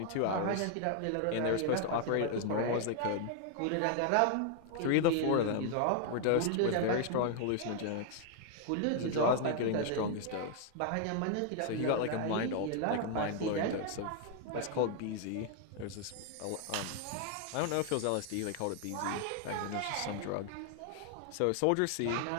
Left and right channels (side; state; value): both; different; correlation 0.00